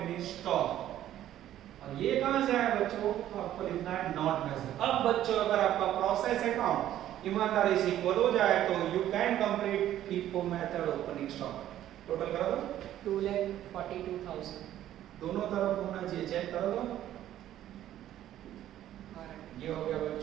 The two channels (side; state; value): left; quieter; 12.4 dB